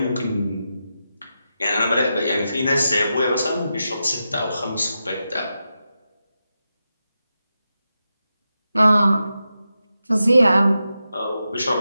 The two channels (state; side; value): inverted; both; correlation -0.89